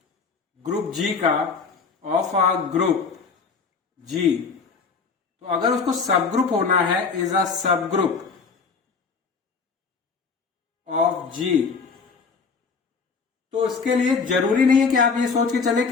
ग्रुप G का ऑफ अ ग्रुप G, तो अगर उसको सब ग्रुप होना है is a subgroup of G, तो इसके लिए जरूरी नहीं है कि आप ये सोच के चले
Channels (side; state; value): right; quieter; 5.1 dB